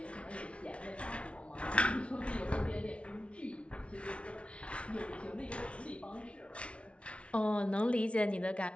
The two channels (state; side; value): late; right; 0.061 ms